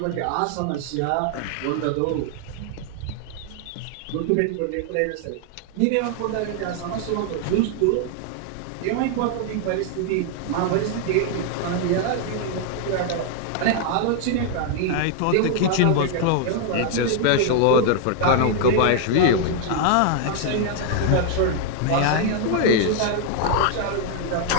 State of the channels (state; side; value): different; both; correlation 0.00